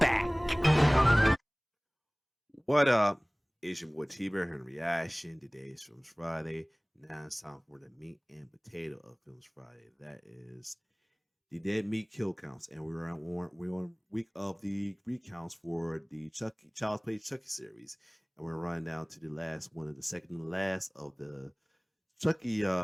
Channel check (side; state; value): both; identical; correlation 1.00